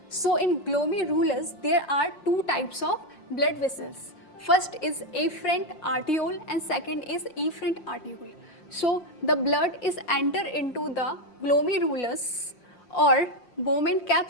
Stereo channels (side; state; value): right; late; 5.6 ms